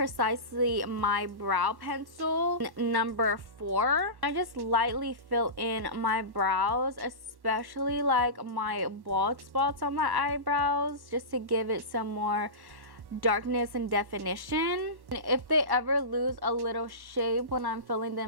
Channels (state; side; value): late; left; 1.1 ms